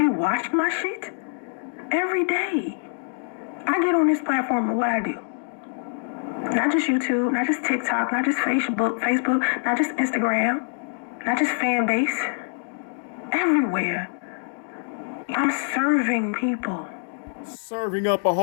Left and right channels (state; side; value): silent; right; digital silence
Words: watch my shit every day. I get on this platform and what I do. Not just YouTube, not just TikTok, not just Facebook, not just Instagram, not just fan base. Everywhere. I'm serving people. Serving up a